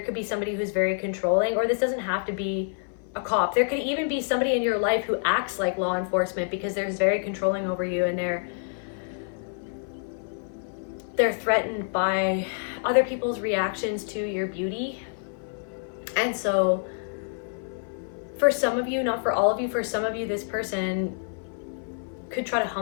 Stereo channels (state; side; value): silent; right; 57 dB below the other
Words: could be somebody who's very controlling, or this doesn't have to be a cop. There could even be somebody in your life who acts like law enforcement because they're very controlling over you and they're threatened by other people's reactions to your beauty, And so for some of you, not for all of you, for some of you, this person could try to